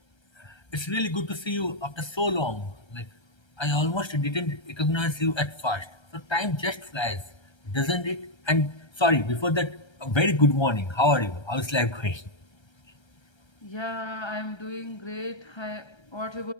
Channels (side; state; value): right; late; 1.3 ms